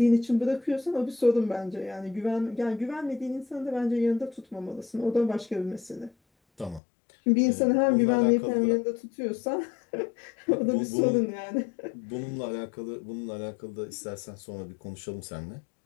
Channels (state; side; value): drops out; right; at 6.8 s